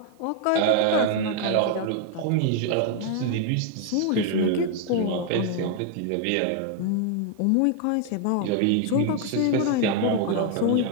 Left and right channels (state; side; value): different; both; correlation 0.00